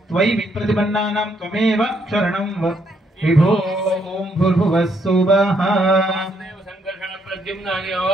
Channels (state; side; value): normal; both; correlation 0.73